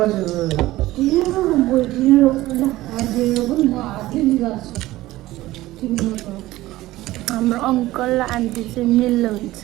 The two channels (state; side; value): quieter; left; 16.9 dB